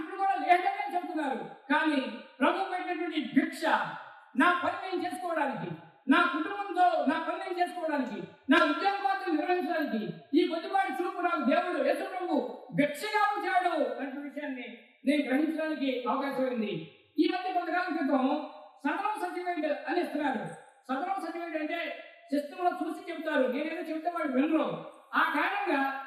కూడా లేదని చెప్తున్నారు. కానీ ప్రభు పెట్టినటువంటి భిక్ష నా పని నేను చేసుకోవడానికి, నా కుటుంబంతో నా పని నేను చేసుకోవడానికి, నా ఉద్యోగ పాత్రలు నిర్వహించడానికి ఈ కొద్దిపాటి చూపు నాకు దేవుడు యేసు ప్రభు భిక్షగా ఉంచాడు అనే విషయాన్ని నేను గ్రహించడానికి అవకాశం ఉంది. ఈ మధ్య కొంతకాలం క్రితం సదనం సర్టిఫికేట్ అని ఇస్తున్నారు. సదనం సర్టిఫికేట్ అంటే సిస్టంలో చూసి చెప్తారు, నేనేదో చెప్తే వాళ్ళు వినరు. ఆ కారణంగా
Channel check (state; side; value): identical; both; correlation 1.00